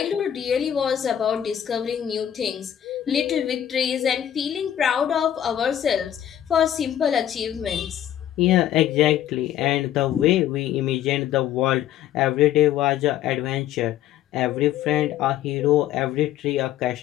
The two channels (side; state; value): right; quieter; 11.1 dB